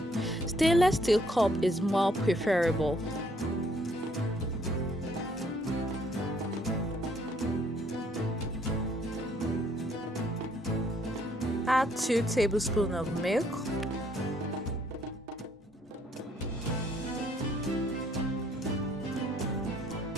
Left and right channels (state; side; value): normal; both; correlation 0.66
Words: Stainless steel cup is more preferable. Add 2 tablespoons of milk.